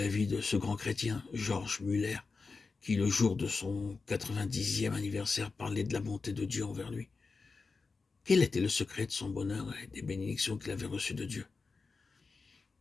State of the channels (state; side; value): quieter; right; 4.4 dB